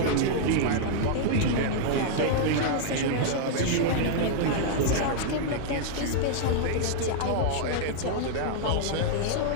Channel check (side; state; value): both; different; correlation -0.01